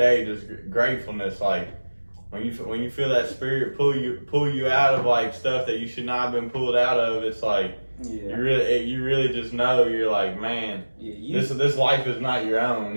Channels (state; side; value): inverted; both; correlation -1.00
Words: just gratefulness. Like, when you feel that spirit pull you out of like stuff that you should not have been pulled out of, it's like, you really just know, you're like, man, this life is not your own.